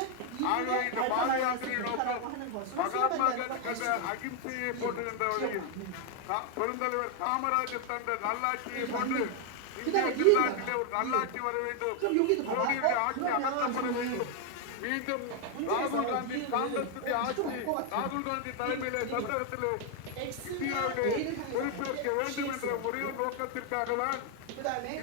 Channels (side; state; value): both; different; correlation 0.01